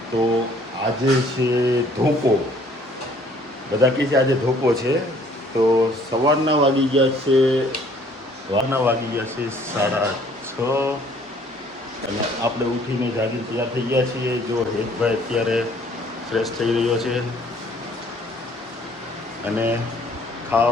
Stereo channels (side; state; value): both; normal; correlation 0.59